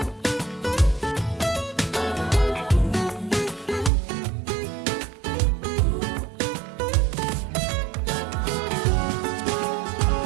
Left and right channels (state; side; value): drops out; left; at 3.9 s